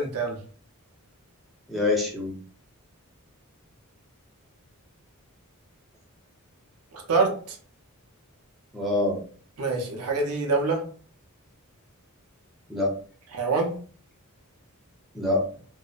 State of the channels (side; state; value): both; normal; correlation 0.01